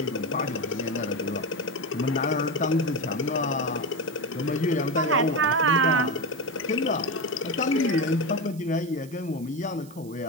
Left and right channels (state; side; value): noise; right; hiss, 23 dB below the sound